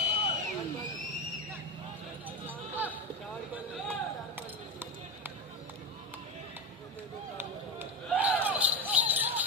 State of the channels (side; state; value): both; normal; correlation 0.19